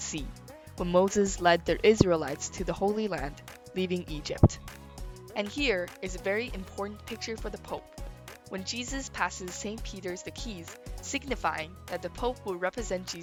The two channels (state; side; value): identical; both; correlation 1.00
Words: Sea, when Moses led the Israelites to the Holy Land, leaving Egypt. And here is a very important picture for the Pope, when Jesus passes St. Peter's the keys, signifying that the Pope will represent